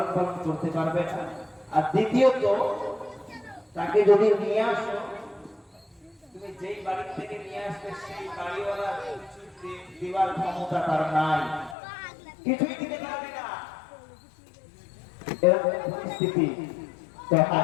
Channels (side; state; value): right; drops out; at 11.8 s